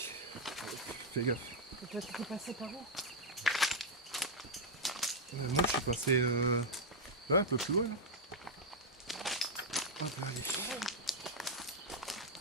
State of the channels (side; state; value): both; normal; correlation 0.00